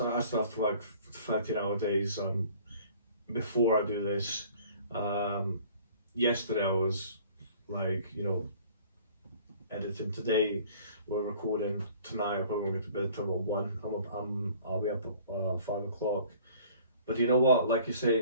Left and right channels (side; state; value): both; inverted; correlation -0.51